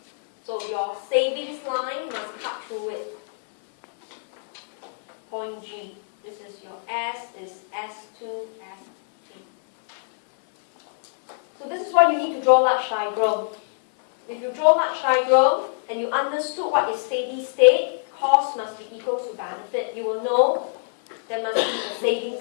So your savings line must cut through it. Point G. This is your S is S2, S3. So this is why you need to draw large diagram. If you draw large diagram and you understood what is steady state, cost must be equal to benefit. You will know there must be a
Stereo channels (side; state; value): right; silent; digital silence